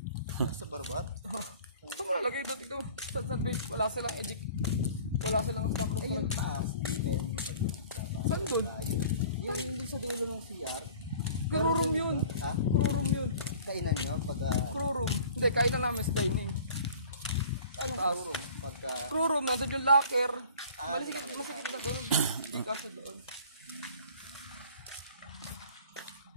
Nasa barbat. Saan mo nalagay doon ito? Sa base, wala silang edit. Wala silang stock room. Ayun, taas. Hindi tayo. Saan doon? Yung hindi sa dulo ng CR. Crew room yun. Ha? Crew room yun. Kainan nyo pag... Crew room. Hindi, kain na namin sa dining. Anong Taas. room? Pagka... Crew room, nandun yung locker. Ah, Masikip na doon. Hindi kasi doon.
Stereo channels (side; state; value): both; inverted; correlation -0.47